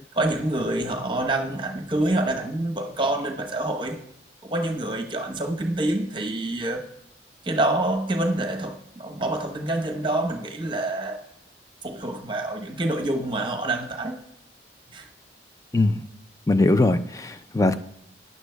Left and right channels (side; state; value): both; normal; correlation 0.64